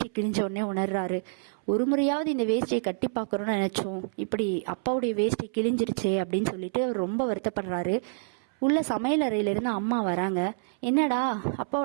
கிழிஞ்ச உடனே உணர்றாரு. ஒரு முறையாவது இந்த வேஷ்டியை கட்டி பார்க்குறோன்னு நினச்சோம், இப்படி அப்பாவுடைய வேஷ்டி கிழிஞ்சிருச்சே அப்படின்னு சொல்லிட்டு அவர் ரொம்ப வருத்தப்படுறாரு. உள்ள சமையல் அறையிலிருந்து அம்மா வராங்க. என்னடா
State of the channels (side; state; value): left; silent; 60 dB below the other